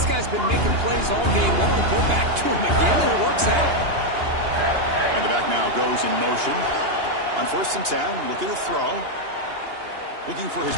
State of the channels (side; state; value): left; late; 2.8 ms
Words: guy's been making plays all game long. Go back to him again, and it works out. And the back now goes in motion. On first and 10, looking to throw. Looking for his